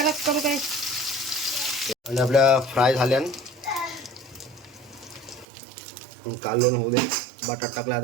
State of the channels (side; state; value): left; drops out; at 5.5 s